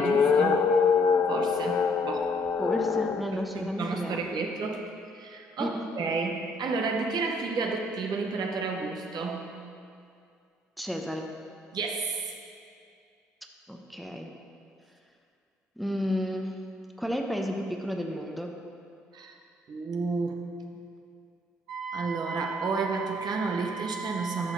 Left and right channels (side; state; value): both; normal; correlation 0.66